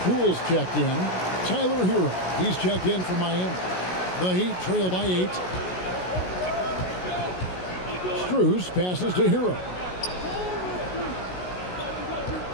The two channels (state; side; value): late; right; 16 ms